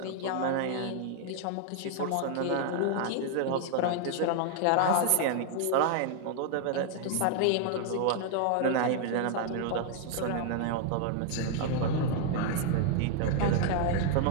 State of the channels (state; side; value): different; both; correlation 0.00